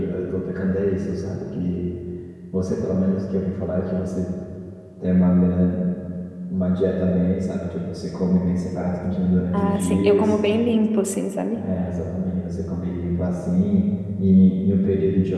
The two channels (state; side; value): identical; both; correlation 1.00